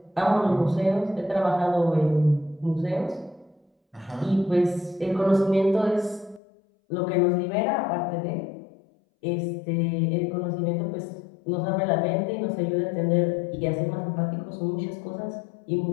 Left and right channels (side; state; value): right; drops out; at 6.4 s